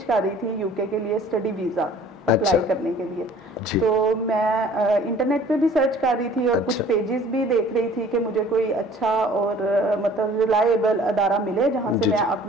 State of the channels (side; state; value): both; normal; correlation 0.51